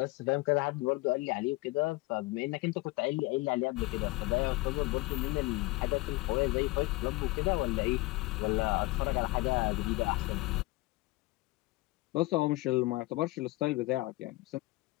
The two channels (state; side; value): quieter; right; 21.6 dB